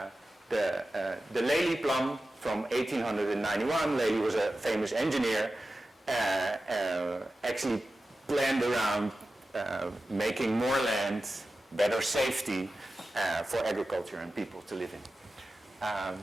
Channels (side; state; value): both; normal; correlation 0.94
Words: the Lely plan from 1891, Lely was a famous engineer, actually planned around making more land, better safety for agriculture and people to live in.